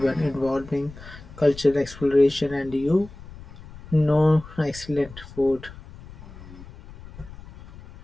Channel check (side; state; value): left; noise; rumble, 17 dB below the sound